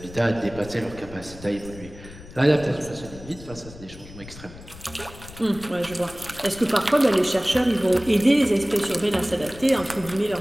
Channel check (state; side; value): noise; left; rumble, 17 dB below the sound